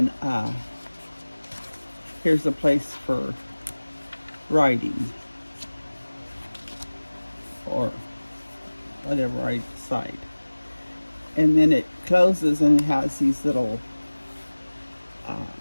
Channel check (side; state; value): both; inverted; correlation -1.00